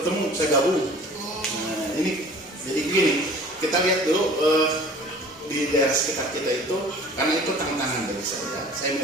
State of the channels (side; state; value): both; normal; correlation 0.47